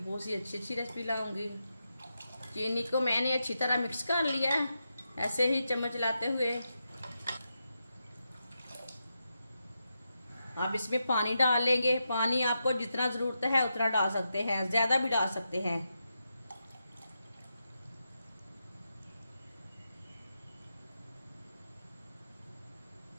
सी अच्छी अच्छी रेसिपी लाऊंगी। चीनी को मैंने अच्छी तरह मिक्स कर लिया है, ऐसे ही चम्मच लाते हुए। अब इसमें पानी डाल लेंगे। पानी आपको जितना ज़रूरत है उतना डाल सकते हैं, ज़्यादा भी डाल सकते हैं।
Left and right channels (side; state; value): both; inverted; correlation -0.86